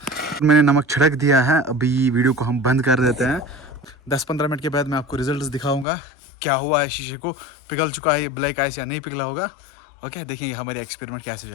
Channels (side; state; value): right; drops out; at 5.9 s